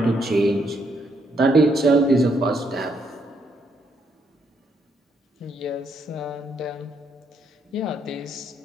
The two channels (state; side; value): normal; both; correlation 0.75